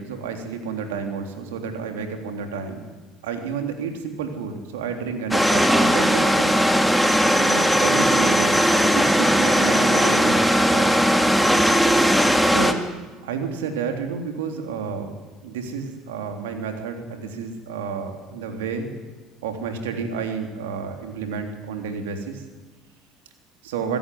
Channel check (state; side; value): normal; both; correlation 0.82